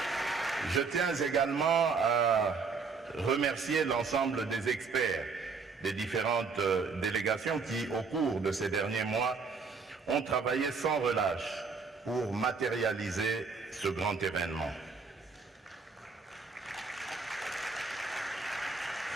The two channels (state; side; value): quieter; left; 4.9 dB